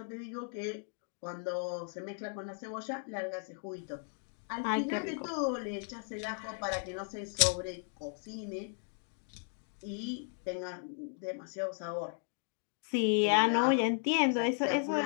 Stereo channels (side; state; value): right; silent; 54 dB below the other